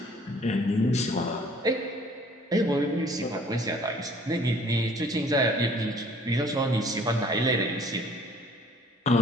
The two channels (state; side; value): normal; both; correlation 0.55